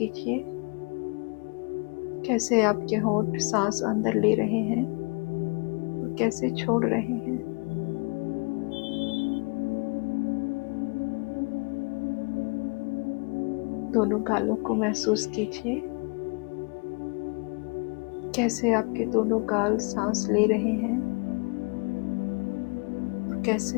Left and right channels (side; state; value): right; quieter; 33.3 dB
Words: कैसे आपके होठ सांस अंदर ले रहे हैं और कैसे छोड़ रहे हैं। दोनों गालों को महसूस कीजिए, कैसे आपके दोनों गाल सांस ले रहे हैं और